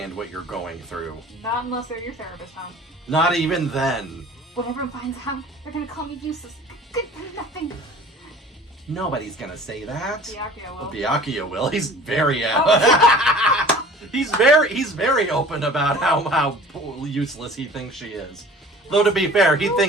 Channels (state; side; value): normal; both; correlation 0.45